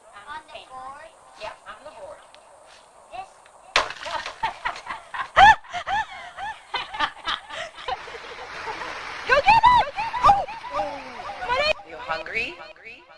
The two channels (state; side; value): identical; both; correlation 1.00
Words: paint. Board? Yeah, on the board. This? Go get it! Oh! You hungry?